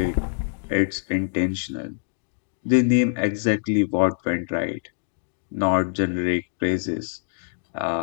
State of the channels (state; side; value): silent; right; digital silence